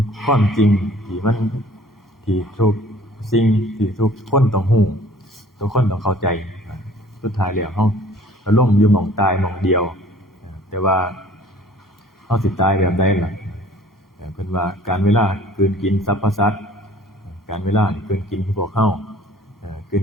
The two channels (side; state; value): both; normal; correlation 0.52